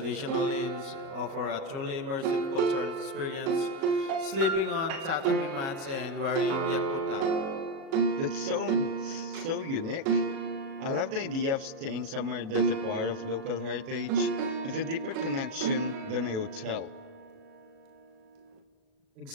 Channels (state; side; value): late; left; 37 ms